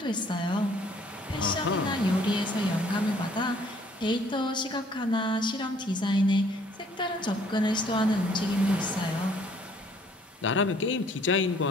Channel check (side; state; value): both; normal; correlation 0.60